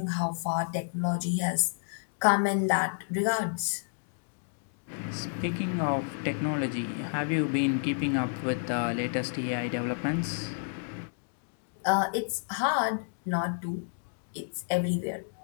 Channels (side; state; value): right; silent; digital silence